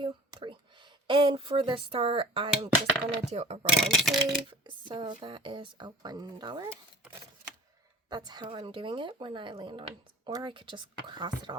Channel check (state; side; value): normal; both; correlation 0.44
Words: 3. And for the start, I'm just going to do a roll and save. So that is a $1. That's how I'm doing it when I land on, or I could just cross it